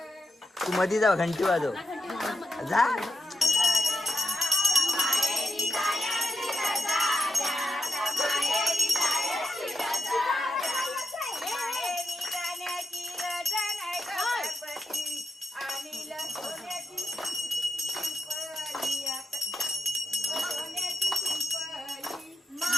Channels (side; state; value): both; normal; correlation 0.88